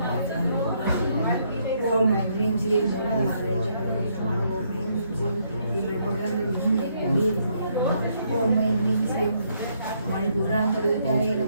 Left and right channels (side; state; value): both; inverted; correlation -0.72